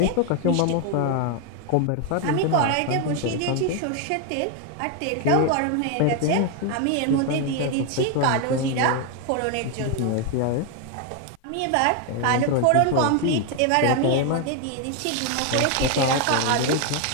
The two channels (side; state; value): both; different; correlation 0.01